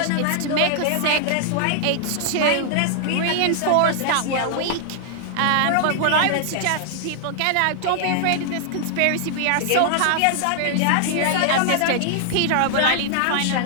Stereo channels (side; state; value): both; different; correlation -0.01